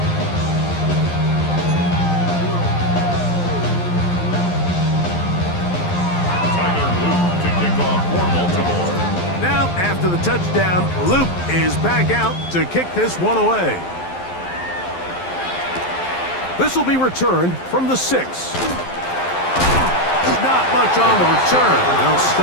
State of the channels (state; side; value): late; right; 11 ms